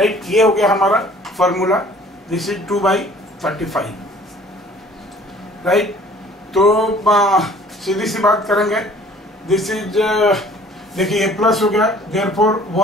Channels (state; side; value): normal; both; correlation 0.53